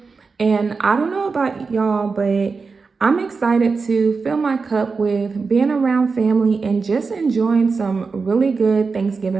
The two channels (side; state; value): left; quieter; 4.6 dB